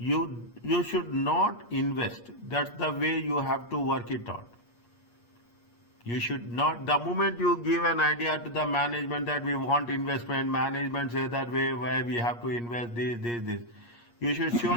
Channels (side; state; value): right; late; 8.4 ms